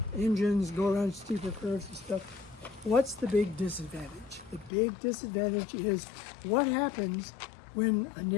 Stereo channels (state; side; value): drops out; right; at 4.7 s